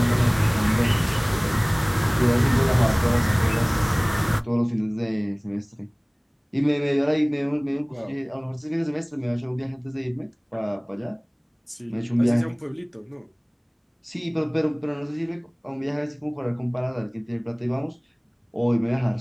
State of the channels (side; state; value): both; identical; correlation 1.00